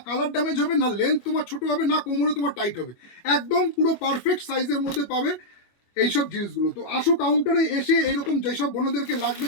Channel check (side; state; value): right; late; 25 ms